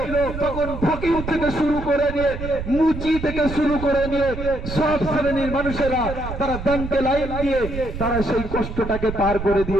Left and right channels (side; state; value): right; noise; rumble, 8 dB below the sound